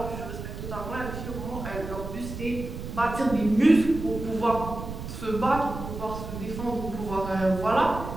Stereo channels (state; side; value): noise; right; rumble, 8 dB below the sound